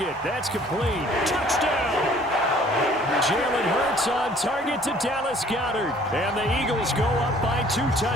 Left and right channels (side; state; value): both; normal; correlation 0.55